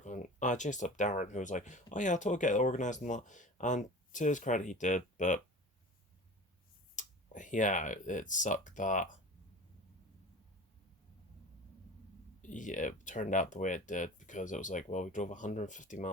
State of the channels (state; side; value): normal; both; correlation 0.37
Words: I chased up Darren, who was like, oh yeah, I'll totally get it organized and that. And to his credit, he did, but yeah, it sucked that yeah, it turned out the way it did because it was like, well, we drove 150